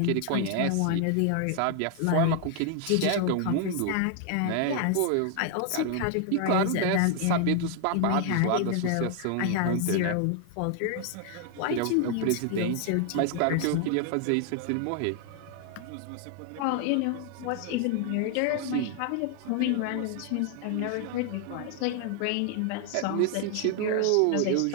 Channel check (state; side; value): different; both; correlation 0.00